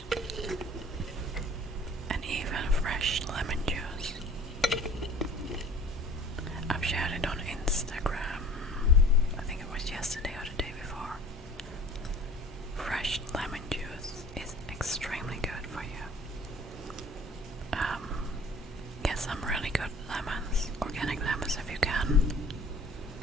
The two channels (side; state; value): both; normal; correlation 0.48